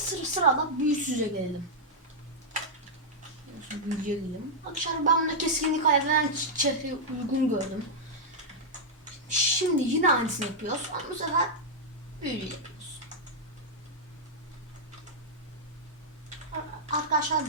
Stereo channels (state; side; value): normal; both; correlation -0.06